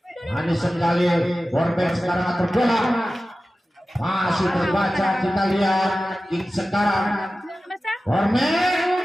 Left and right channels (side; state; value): both; normal; correlation 0.95